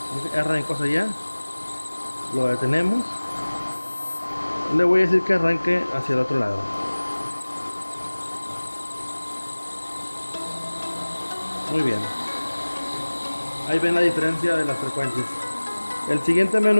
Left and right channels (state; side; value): inverted; both; correlation -1.00